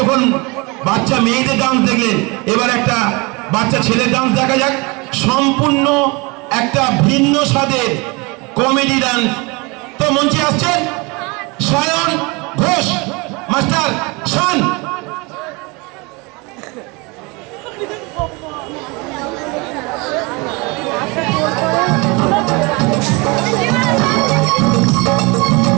বাচ্চা মেয়েদের ডান্স দেখলেন, এবার একটা বাচ্চা ছেলের ডান্স দেখা যাক। সম্পূর্ণ একটা ভিন্ন স্বাদের কমেডি ডান্স। তো মঞ্চে আসছেন সায়ন ঘোষ মাস্টার শান।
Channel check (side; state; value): left; quieter; 27.2 dB